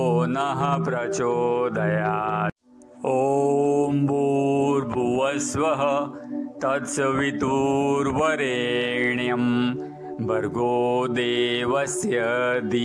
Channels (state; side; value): identical; both; correlation 1.00